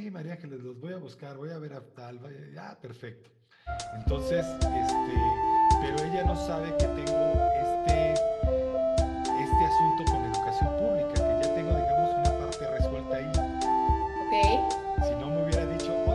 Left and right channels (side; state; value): both; identical; correlation 1.00